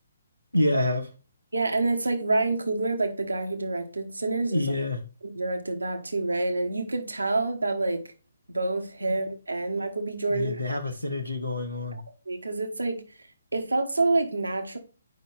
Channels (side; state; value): both; inverted; correlation -0.87